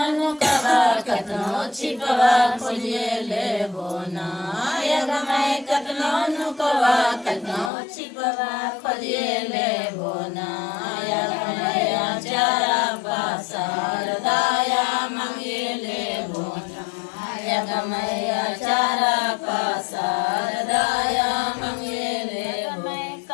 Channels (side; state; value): right; drops out; at 7.7 s